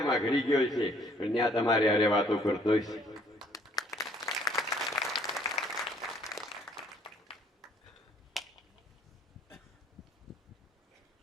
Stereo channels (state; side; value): normal; both; correlation 0.61